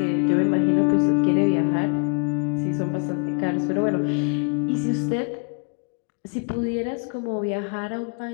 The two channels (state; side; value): quieter; right; 38.6 dB